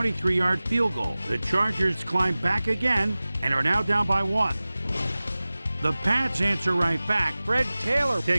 field goal. The Chargers climb back again and are now down by 1. The Pats answer right back. Fred Taylor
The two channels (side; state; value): both; inverted; correlation -0.98